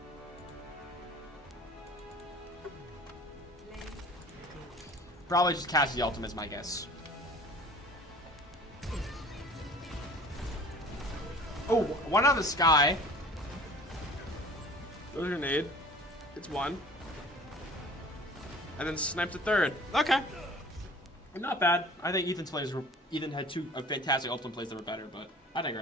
Probably just Cassidy ultimate is my guess. Oh, one out of the sky. Throws a grenade. It's 1. And then snipe the 3rd. Okay. Not bad. I think Ethan's plays were... Ethan had 2 fantastic ultimate plays that were better, but I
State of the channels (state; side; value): normal; both; correlation 0.45